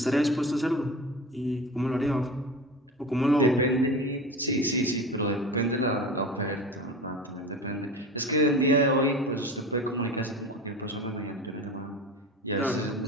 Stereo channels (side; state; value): both; normal; correlation 0.31